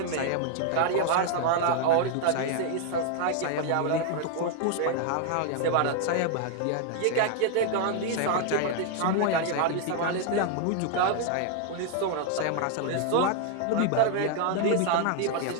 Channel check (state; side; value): different; both; correlation 0.00